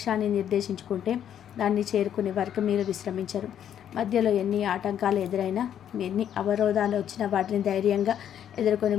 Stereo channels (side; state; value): right; quieter; 9.8 dB